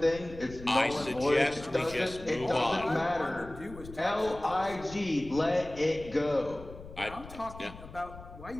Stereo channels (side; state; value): left; noise; rumble, 15 dB below the sound